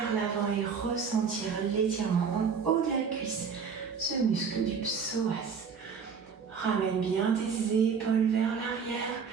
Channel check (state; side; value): quieter; left; 6.1 dB